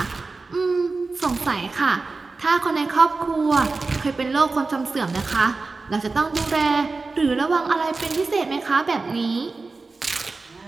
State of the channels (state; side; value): quieter; left; 3.9 dB